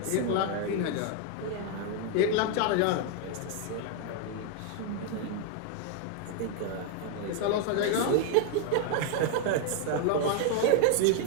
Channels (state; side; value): different; both; correlation 0.01